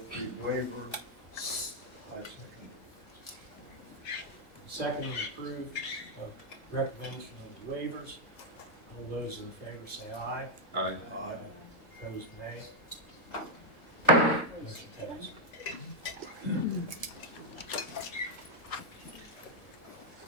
the waiver, I second. Second is approved of recommendation of the waivers. All those in favor say aye. Aye. Aye. Opposed, nay. Motion carries.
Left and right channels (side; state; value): right; late; 1.6 ms